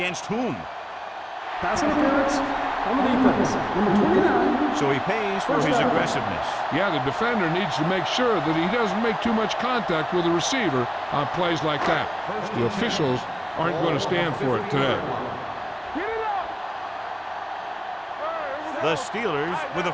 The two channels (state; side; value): identical; both; correlation 1.00